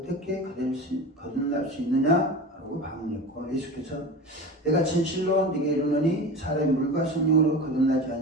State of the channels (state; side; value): normal; both; correlation 0.30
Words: 거듭날 수 있느냐 라고 반문했고, 예수께서 내가 진실로 네게 이르노니 사람이 물과 성령으로 거듭나지